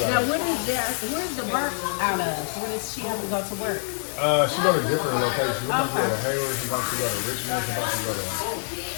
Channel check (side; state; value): right; silent; digital silence